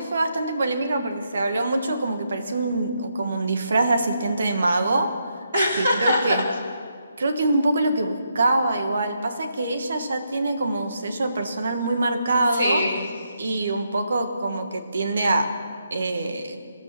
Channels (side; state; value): both; inverted; correlation -0.79